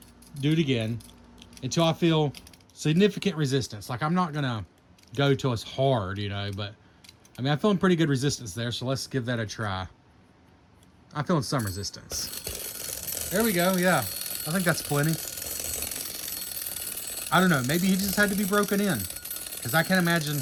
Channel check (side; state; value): both; identical; correlation 1.00